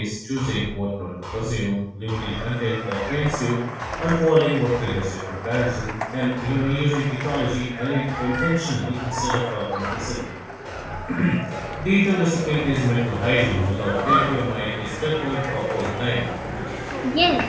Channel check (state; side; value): identical; both; correlation 1.00